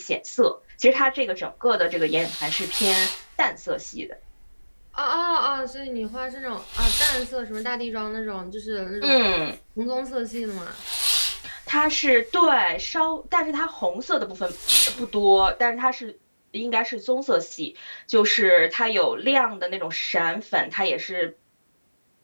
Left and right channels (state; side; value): inverted; both; correlation -1.00